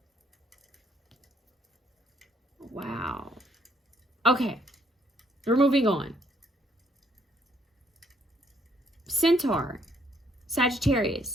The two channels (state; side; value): normal; both; correlation 0.69